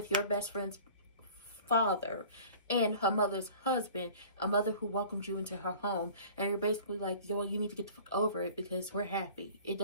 your best friend's father and her mother's husband, a mother who welcomed you into her home, and you're basically like, yo, you need to get the fuck over it because we're happy. It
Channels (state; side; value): inverted; both; correlation -0.46